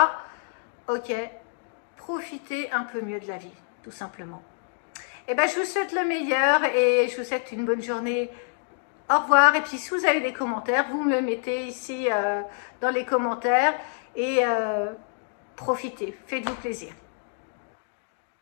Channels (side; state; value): right; silent; 60 dB below the other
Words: ok, profiter un peu mieux de la vie, tout simplement. Eh bien, je vous souhaite le meilleur et je vous souhaite une bonne journée. Au revoir. Et puis, si vous avez des commentaires, vous me mettez ici dans les commentaires et profitez. Faites-vous plaisir.